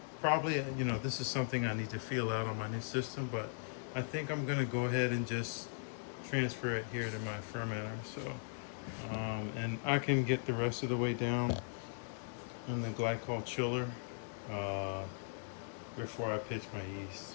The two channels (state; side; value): silent; right; digital silence